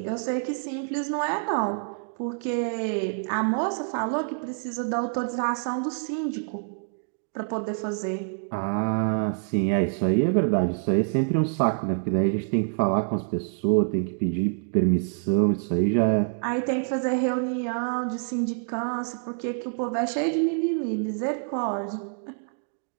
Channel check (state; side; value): silent; left; 61 dB below the other